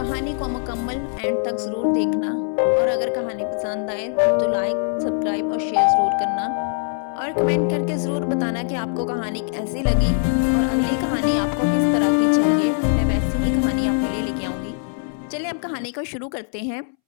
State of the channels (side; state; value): right; silent; 64 dB below the other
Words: को मुकम्मल एंड तक ज़रूर देखना और अगर कहानी पसंद आए तो लाइक, सब्सक्राइब और शेयर ज़रूर करना और कमेंट करके ज़रूर बताना कि आपको कहानी कैसी लगी और अगली कहानी आपको किस तरह की चाहिए। मैं वैसी ही कहानी आपके लिए लेके आऊँगी। चलिए अब कहानी को शुरू करते हैं।